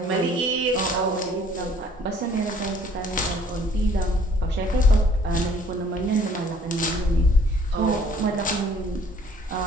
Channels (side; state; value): both; normal; correlation 0.58